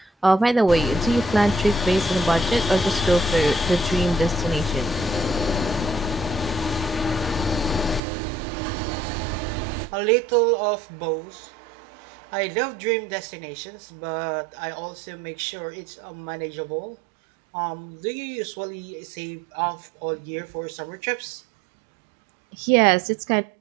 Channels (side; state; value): left; drops out; at 8.0 s